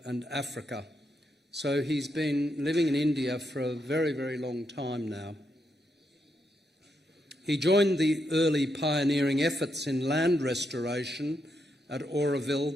and Africa. So he's been living in India for a very, very long time now. He joined the early pioneering efforts in land restoration at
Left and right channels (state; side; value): normal; both; correlation 0.81